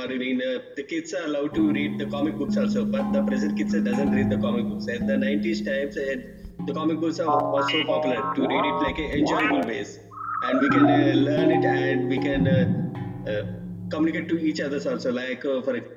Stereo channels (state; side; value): identical; both; correlation 1.00